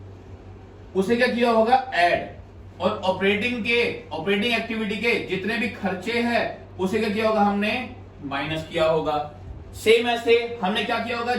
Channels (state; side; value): identical; both; correlation 1.00